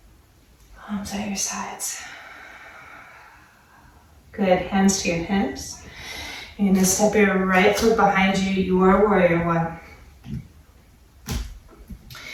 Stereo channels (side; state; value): both; identical; correlation 1.00